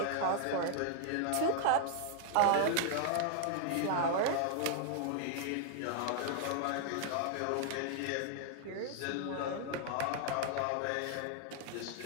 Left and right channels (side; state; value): both; different; correlation 0.00